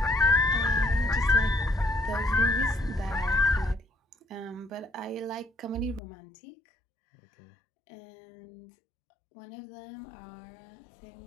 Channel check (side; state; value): right; drops out; at 6.0 s